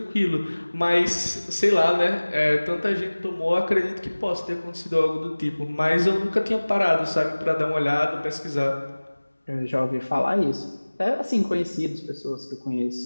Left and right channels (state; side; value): inverted; both; correlation -1.00